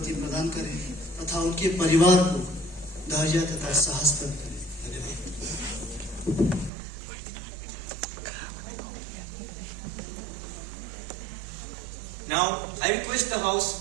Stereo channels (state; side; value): drops out; left; at 6.7 s